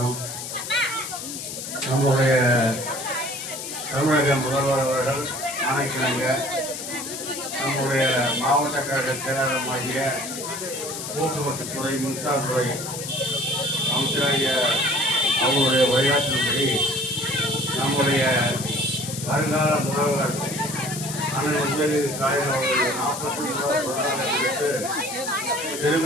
நம்முடைய தமிழக முதல்வர் அவர்கள் ஆணைக்கிழங்க நம்முடைய மாவட்ட கழக செயலாளருமாகிய போக்குவரத்துத்துறை மின்சாரத்துறை அமைச்சராகிய அவருடைய உரையாற்றின்படி நம்முடைய வருங்கால முதல்வர் அண்ணன் உதயநிதி ஸ்டாலின் அவர்கள் 40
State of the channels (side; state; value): left; noise; hiss, 7 dB below the sound